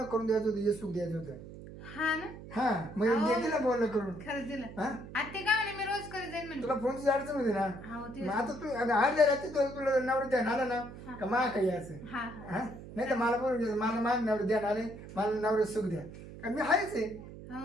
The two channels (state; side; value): noise; right; hum, 14 dB below the sound